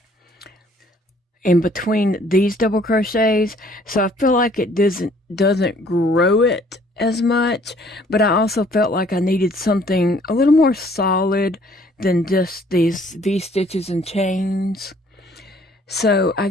in between these double crochets. So I feel like it doesn't grow it as much, but I also felt like I needed something a little more solid than just these V-stitches and chains. So I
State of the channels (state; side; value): normal; both; correlation 0.59